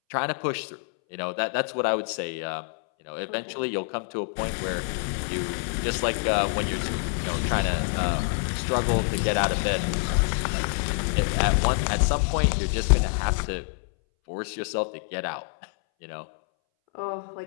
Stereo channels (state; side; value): silent; right; 61 dB below the other